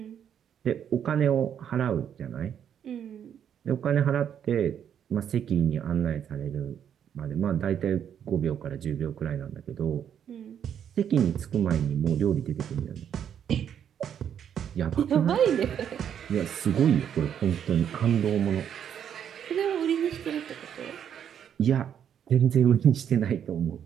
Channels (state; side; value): quieter; left; 8.9 dB